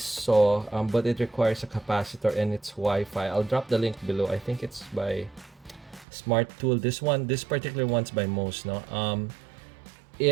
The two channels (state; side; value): drops out; left; at 6.1 s